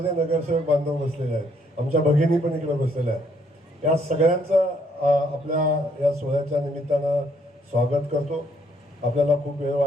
नगरसेवक बांधव बसलेले आहेत. आमच्या भगिनी पण इकडे बसलेल्या आहेत. या सगळ्यांचं आपल्या या सोहळ्याच्या निमित्तानं स्वागत करतो. आपल्याला खूप वेळ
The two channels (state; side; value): normal; both; correlation 0.68